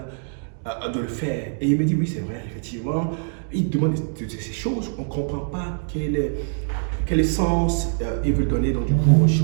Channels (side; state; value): left; silent; digital silence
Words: de le faire. Et il me dit, oui, c'est vrai, effectivement, il demande ces choses, on ne comprend pas quel sens il veut donner donc, du coup, aux